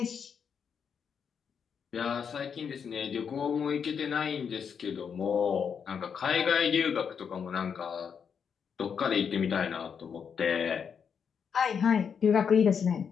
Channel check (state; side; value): quieter; right; 6.9 dB